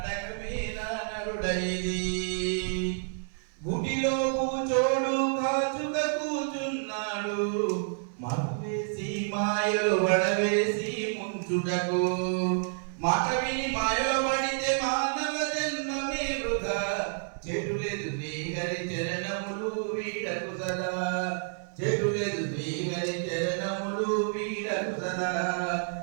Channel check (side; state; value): left; silent; 58 dB below the other